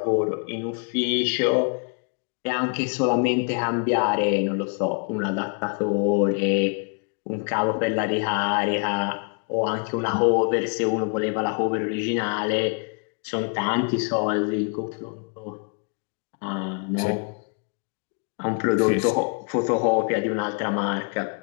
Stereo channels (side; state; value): right; quieter; 37.4 dB